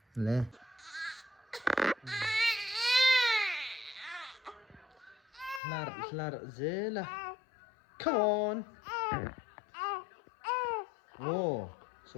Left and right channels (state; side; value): drops out; right; at 5.6 s